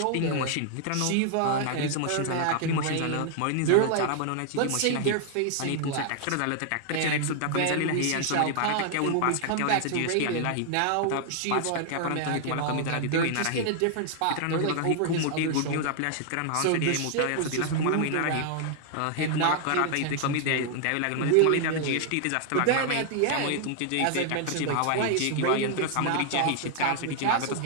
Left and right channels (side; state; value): both; different; correlation 0.00